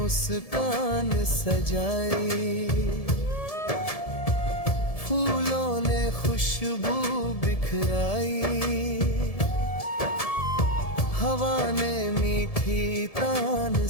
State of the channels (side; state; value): right; late; 1.7 ms